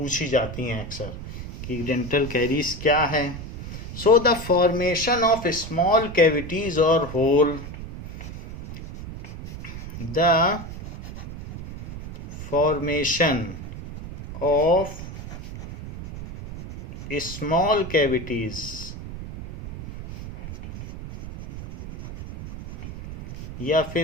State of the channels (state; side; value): noise; right; rumble, 10 dB below the sound